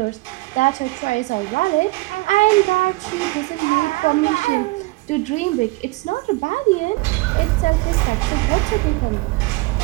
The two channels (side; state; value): left; quieter; 22.4 dB